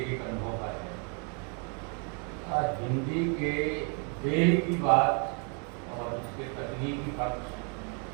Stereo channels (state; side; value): quieter; left; 37.8 dB